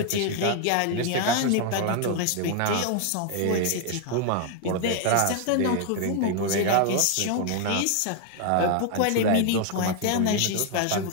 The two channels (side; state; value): both; different; correlation 0.00